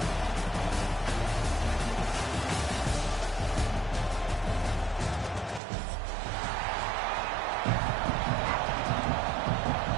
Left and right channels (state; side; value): drops out; left; at 5.6 s